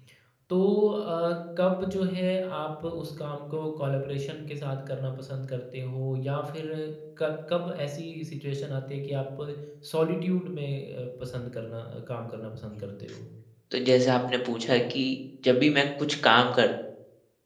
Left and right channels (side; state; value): both; identical; correlation 1.00